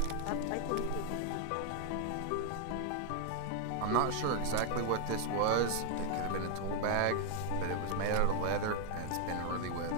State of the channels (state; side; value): different; both; correlation 0.00